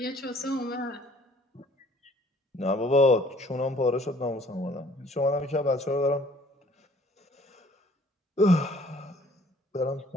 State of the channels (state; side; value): normal; both; correlation 0.57